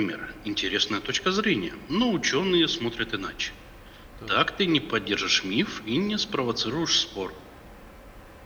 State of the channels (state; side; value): identical; both; correlation 1.00